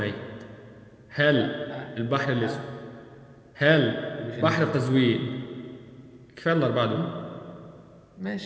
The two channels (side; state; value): both; identical; correlation 1.00